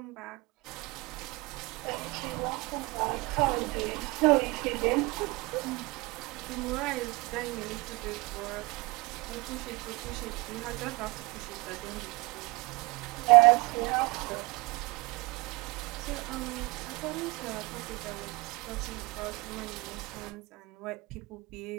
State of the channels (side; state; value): left; quieter; 24.9 dB